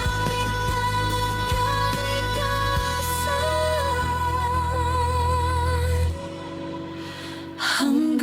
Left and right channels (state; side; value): identical; both; correlation 1.00